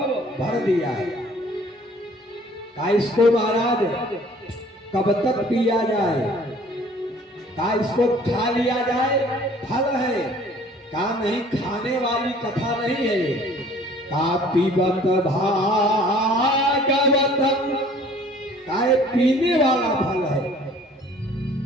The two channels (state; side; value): normal; both; correlation 0.53